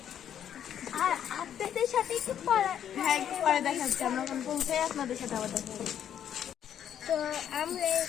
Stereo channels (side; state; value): right; quieter; 9.6 dB